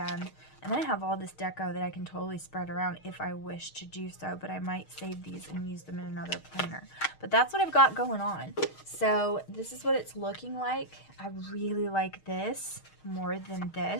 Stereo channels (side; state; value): right; late; 6.4 ms